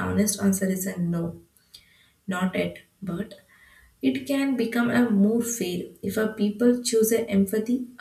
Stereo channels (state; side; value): identical; both; correlation 1.00